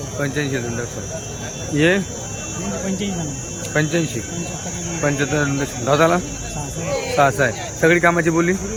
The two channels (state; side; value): identical; both; correlation 1.00